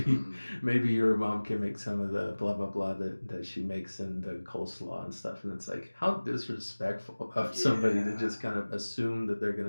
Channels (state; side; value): inverted; both; correlation -1.00